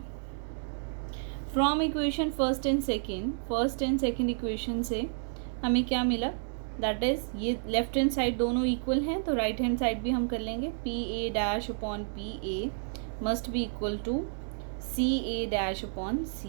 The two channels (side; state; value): left; silent; digital silence